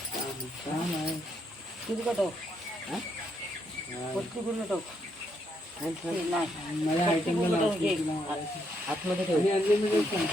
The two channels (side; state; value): both; normal; correlation 0.76